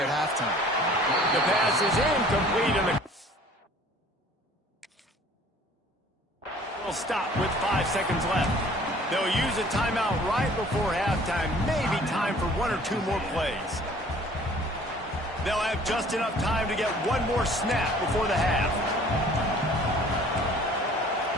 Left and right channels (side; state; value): both; normal; correlation 0.52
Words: halftime. The pass is incomplete, and the will stop with 5 seconds left. They'll use a timeout right before halftime. Maybe time for 1 or 2 more plays. They'll have just enough time to get one more snap before the half.